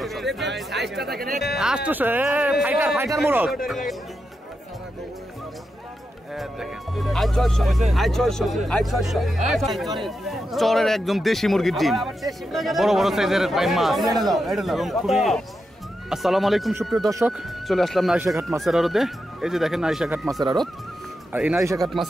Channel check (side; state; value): both; normal; correlation 0.87